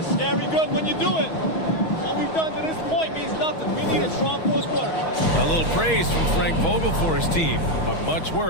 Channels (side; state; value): right; late; 6.2 ms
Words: scary good when you do it. What we've done to this point means nothing. We need a strong fourth quarter. A little praise from Frank Vogel for his team, but much